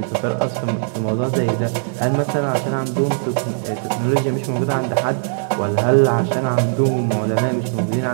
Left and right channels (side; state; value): left; silent; digital silence